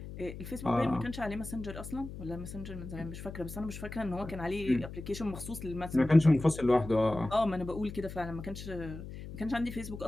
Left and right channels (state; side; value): noise; left; hum, 11 dB below the sound